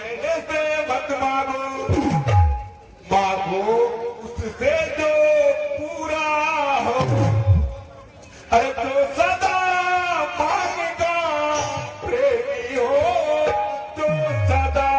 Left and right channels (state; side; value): identical; both; correlation 1.00